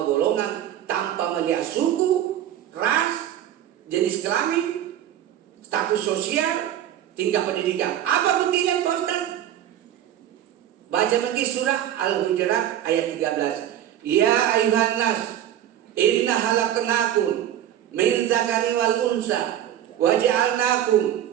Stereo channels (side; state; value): left; quieter; 11.3 dB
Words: golongan tanpa melihat suku, ras, jenis kelamin, status sosial, tingkat pendidikan. Apa buktinya Pak Ustaz? Baca lagi surah Al-Hujurat ayat 13. Ya ayuhan nas, inna halaknakum min zakari wal unsa waja'alnakum